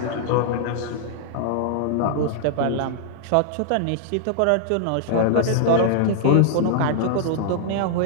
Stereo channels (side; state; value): both; different; correlation -0.01